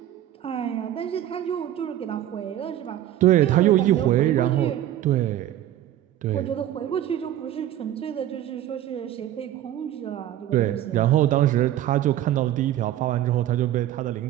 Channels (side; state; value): left; quieter; 12.5 dB